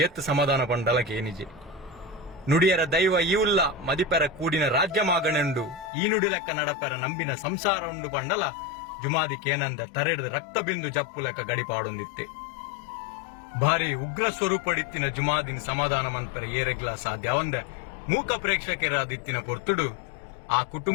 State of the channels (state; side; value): drops out; right; at 5.9 s